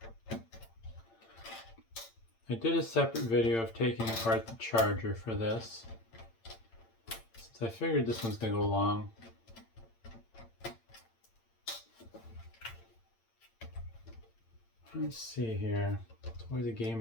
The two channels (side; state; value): right; late; 8.8 ms